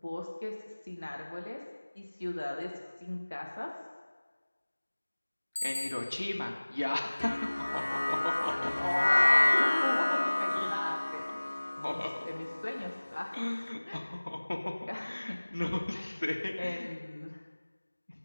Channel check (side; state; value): both; inverted; correlation -1.00